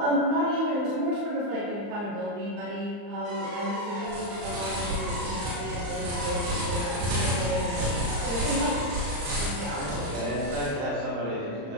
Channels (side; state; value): left; late; 34 ms